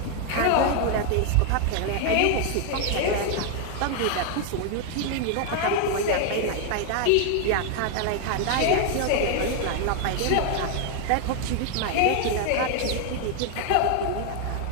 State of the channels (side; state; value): both; different; correlation 0.00